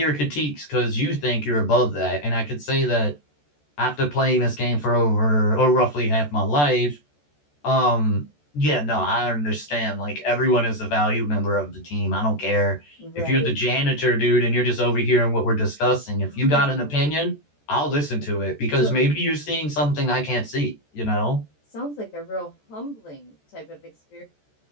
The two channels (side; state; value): right; late; 14 ms